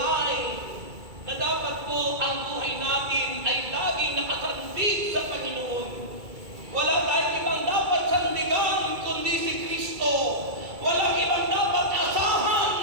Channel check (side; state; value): left; late; 2.3 ms